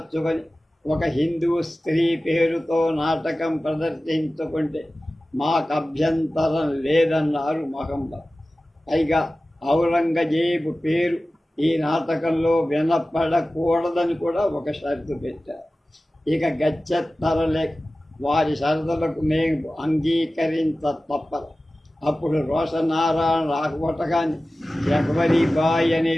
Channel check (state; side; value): normal; both; correlation 0.96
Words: ఒక హిందూ స్త్రీ పేరుతో నాటకం ప్రదర్శించుకుంటే మాకు అభ్యంతరం లేదన్నారు మహమ్మద్. పైగా ఔరంగజేబు పేరు ఈ నాటకంలో వినపడకూడదని కూడా ఒక షరతు పెట్టారు. ఇక గచ్చెత్తరలే వారి షరతులకు మేము అంగీకరించ తప్పదు. అప్పుడు రోషనారాయణ రాకపోటగాని జగవరీబాయి అనే